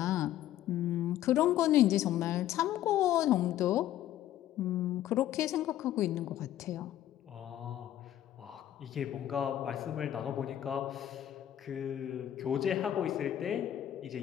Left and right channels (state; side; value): quieter; right; 12.3 dB